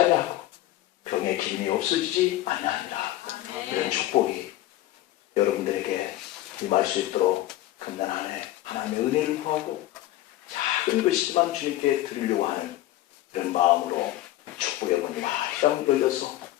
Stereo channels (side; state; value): right; quieter; 14.9 dB